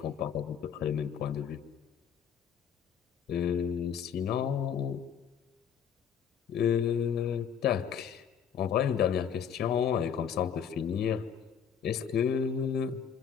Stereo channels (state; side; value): quieter; right; 8.0 dB